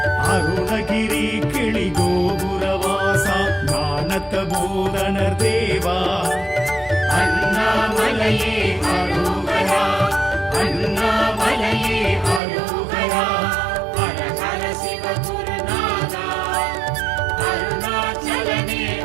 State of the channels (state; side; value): drops out; left; at 12.4 s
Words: அருணகிரி கிளி கோபுரவாசா ஞானத்த பூரணர் தேவா அண்ணாமலையே அரோகரா அண்ணாமலையே அரோகரா ஹர ஹர சிவ குருநாதா அருணாச்சலனே